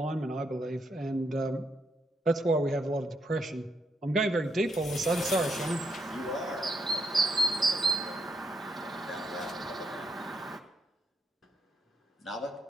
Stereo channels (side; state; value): both; normal; correlation 0.77